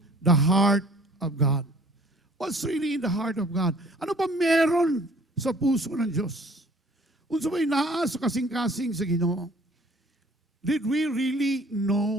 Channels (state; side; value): normal; both; correlation 0.54